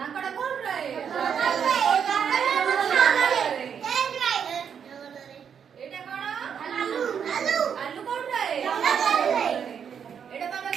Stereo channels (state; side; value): quieter; left; 7.6 dB